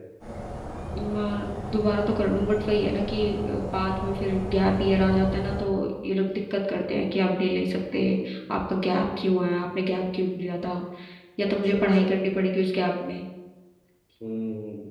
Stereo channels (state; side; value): identical; both; correlation 1.00